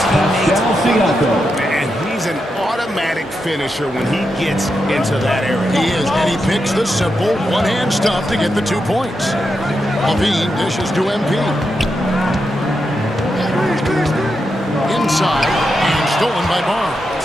teammates are. And he's an automatic finisher when he gets into that area. He is, and he picks the simple one-hand stuff to get the 2 points. Levine dishes to MP. Inside, and stolen by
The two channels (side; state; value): both; normal; correlation 0.86